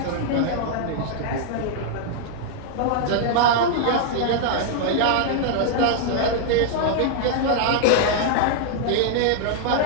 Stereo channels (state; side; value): different; both; correlation -0.01